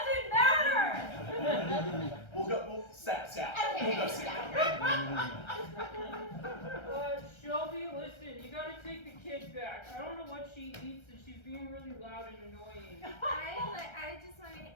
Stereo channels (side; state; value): right; late; 1.3 ms